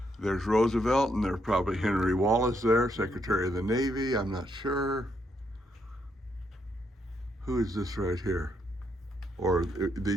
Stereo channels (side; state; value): both; normal; correlation 0.76